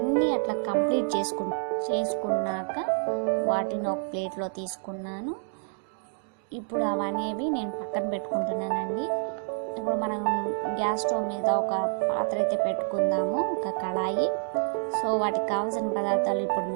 అట్లా కంప్లీట్ చేసుకున్నాక వాటిని ఒక ప్లేట్లో తీసుకున్నాను. ఇప్పుడు అవనేవి నేను పక్కన పెట్టుకుంటున్నానండి. ఇప్పుడు మనం గ్యాస్ స్టవ్ మీద ఒక పాత్ర అయితే పెట్టుకుందాము, ఒక కడాయి. సో వాటికి కావాల్సిన పదార్థాలు ఇప్పుడు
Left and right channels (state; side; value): silent; left; 59 dB below the other